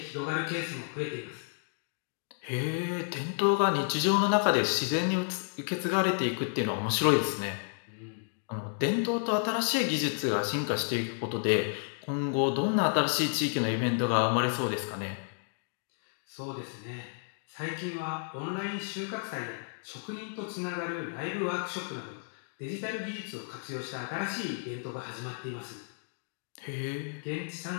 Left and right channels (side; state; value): right; silent; digital silence